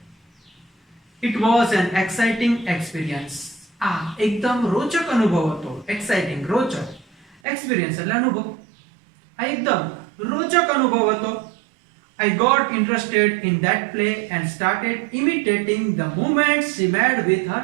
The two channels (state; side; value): drops out; left; at 7.4 s